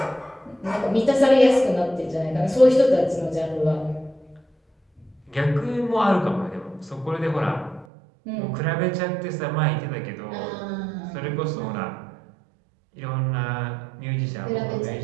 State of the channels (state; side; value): drops out; left; at 7.9 s